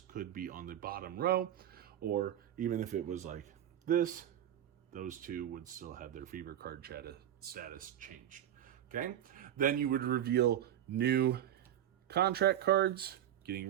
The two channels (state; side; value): quieter; left; 11.2 dB